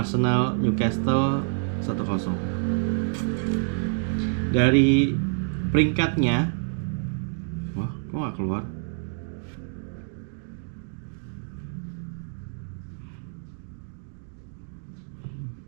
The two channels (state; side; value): silent; left; 60 dB below the other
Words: Newcastle 1-0. Dari peringkatnya, wah, kok nggak keluar?